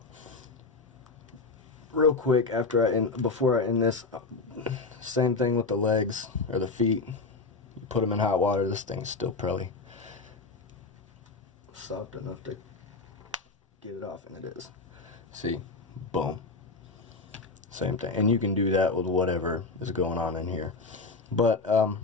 Real quick, before I end this, same thing with the legs or the feet. You put them in hot water. This thing's still probably soft enough to get it off, and it is. See, boom. Same thing, and you can do that with whatever is going on in here. But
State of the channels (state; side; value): quieter; right; 3.8 dB